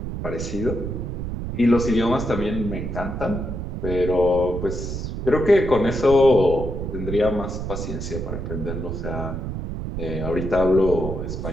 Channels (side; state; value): right; noise; rumble, 5 dB below the sound